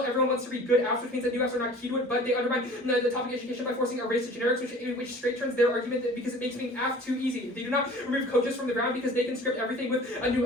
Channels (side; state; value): both; normal; correlation 0.45